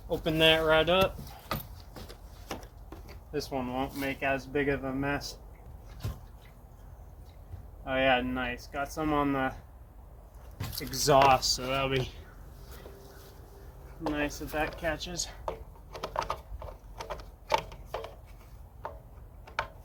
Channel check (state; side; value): identical; both; correlation 1.00